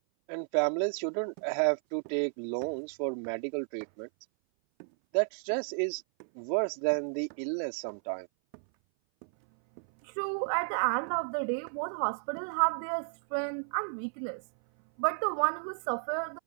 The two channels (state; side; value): silent; left; 56 dB below the other